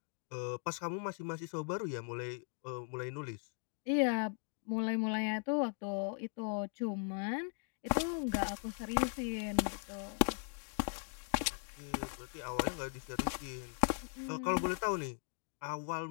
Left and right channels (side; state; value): right; silent; 52 dB below the other